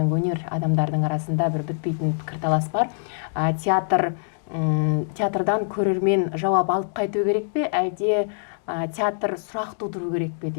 өнер адамдардың арасында бір бітпейтін пікірталас бар. Театрдан көрермен жауап алып қайту керек пе, әлде театр сұрақ тудыру керек пе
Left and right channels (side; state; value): right; silent; digital silence